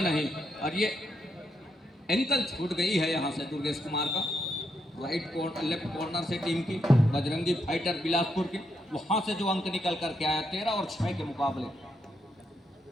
नहीं। और ये एंकल छूट गई है यहाँ से दुर्गेश कुमार का। लेफ्ट कॉर्नर से टीम की बजरंगी फाइटर बिलासपुर की, वहाँ से जो अंक निकल करके आया 13 और 6 के मुकाबले।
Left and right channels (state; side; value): normal; both; correlation 0.80